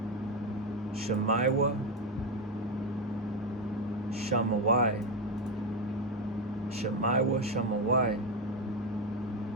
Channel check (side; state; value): both; normal; correlation 0.11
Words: Shammaiwa, Shammawai. Shammaiwa, Shammawai.